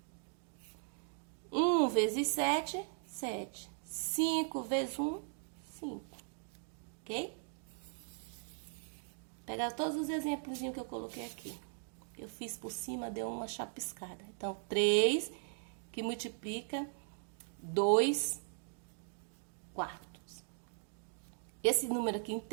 1 vezes 7, 7. 5 vezes 1, 5. Ok? Pegar todos os exemplos que eu coloquei aqui. Eu fiz por cima, deu uma chapiscada. Então, 3, que que multiplica 2 quartos. Esse número aqui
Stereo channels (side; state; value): left; silent; 52 dB below the other